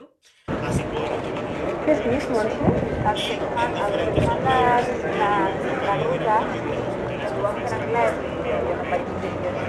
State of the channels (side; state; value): both; identical; correlation 1.00